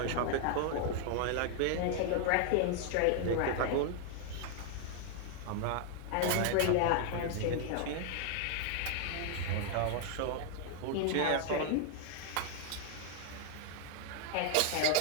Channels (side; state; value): both; different; correlation 0.00